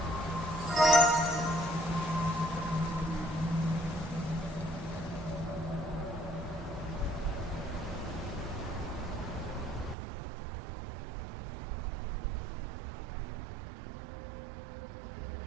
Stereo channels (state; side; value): drops out; left; at 10.0 s